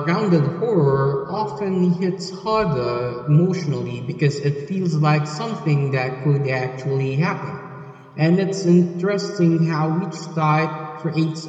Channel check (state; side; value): identical; both; correlation 1.00